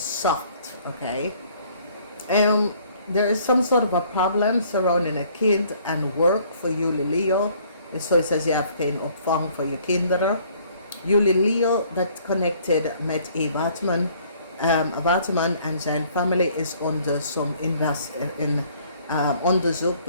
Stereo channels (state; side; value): inverted; both; correlation -0.60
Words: soft, okay? There is some sort of a problem surrounding a kid and work for Juli Leo. So it says je hebt geen opvang voor je kinderen. Juli Leo, dat connected met een waterman en zijn familie is onder onderzoek